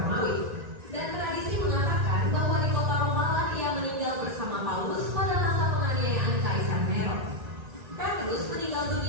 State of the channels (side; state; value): left; late; 2.0 ms